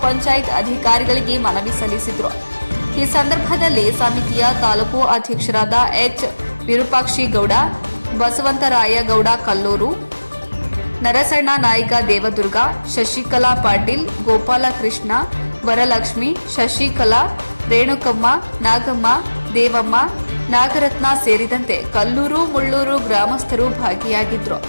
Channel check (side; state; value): both; inverted; correlation -1.00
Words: ಪಂಚಾಯತ್ ಅಧಿಕಾರಿಗಳಿಗೆ ಮನವಿ ಸಲ್ಲಿಸಿದ್ರು. ಈ ಸಂದರ್ಭದಲ್ಲಿ ಸಮಿತಿಯ ತಾಲೂಕು ಅಧ್ಯಕ್ಷರಾದ ಎಚ್ ವಿರೂಪಾಕ್ಷಿ ಗೌಡ, ಬಸವಂತರಾಯ ಗೌಡ ಕಲ್ಲೂರು, ನರಸಣ್ಣ ನಾಯ್ಕ ದೇವದುರ್ಗ, ಶಶಿಕಲಾ ಪಾಟೀಲ್, ಗೋಪಾಲಕೃಷ್ಣ, ವರಲಕ್ಷ್ಮಿ, ಶಶಿಕಲಾ, ರೇಣುಕಮ್ಮ, ನಾಗಮ್ಮ, ದೇವಮ್ಮ, ನಾಗರತ್ನ ಸೇರಿದಂತೆ ಕಲ್ಲೂರು ಮುಳ್ಳೂರು ಗ್ರಾಮಸ್ಥರು ಭಾಗಿಯಾಗಿದ್ರು.